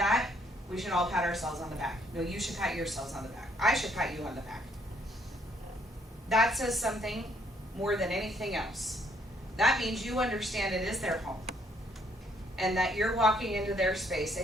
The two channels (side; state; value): both; normal; correlation 0.67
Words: we should all pat ourselves on the back. No, you should pat yourselves on the back. I should pat you on the back. That says something more than anything else. That means you understand it is their home. And that you're walking into their space